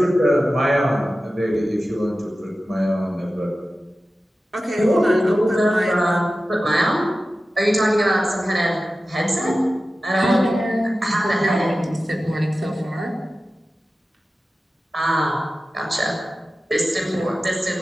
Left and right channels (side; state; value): both; normal; correlation 0.94